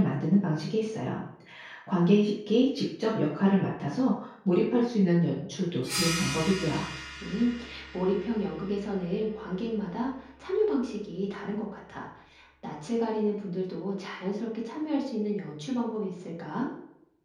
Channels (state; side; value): identical; both; correlation 1.00